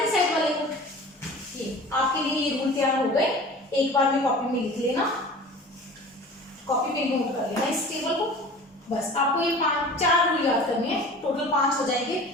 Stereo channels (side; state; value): both; normal; correlation 0.40